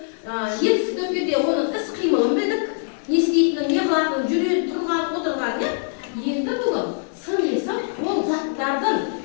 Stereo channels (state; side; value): silent; right; digital silence